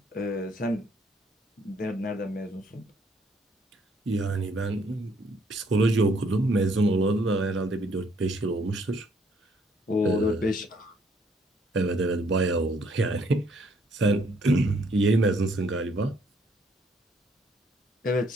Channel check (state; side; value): normal; both; correlation 0.67